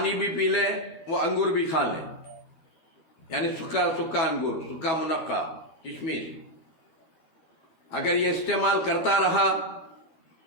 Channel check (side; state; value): right; late; 12 ms